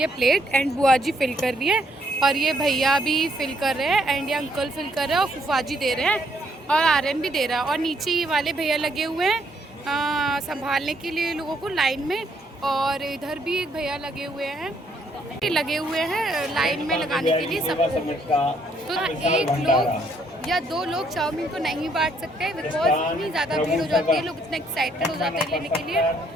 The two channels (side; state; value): both; normal; correlation 0.70